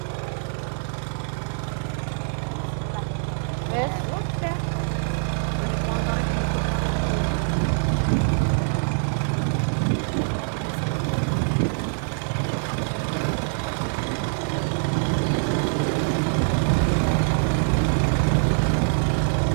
Udah. Golek montore dilebur.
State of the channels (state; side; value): silent; left; 62 dB below the other